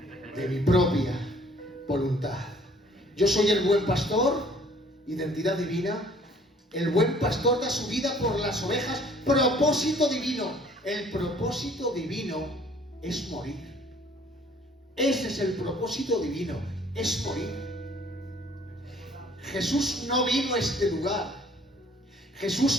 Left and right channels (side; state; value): both; normal; correlation 0.56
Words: de mi propia voluntad. Yo soy el buen pastor, identidad divina. El buen pastor da su vida por las ovejas, propósito divino. El propósito divino es morir. Ese es el propósito divino, es morir. Jesús no vino a este lugar.